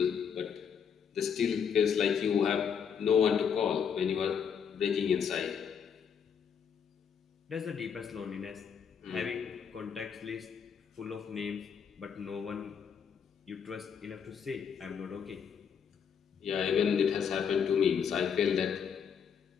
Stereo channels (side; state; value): right; quieter; 7.2 dB